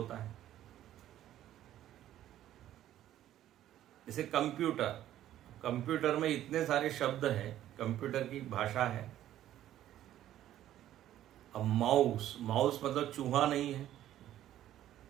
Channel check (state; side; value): quieter; left; 12.5 dB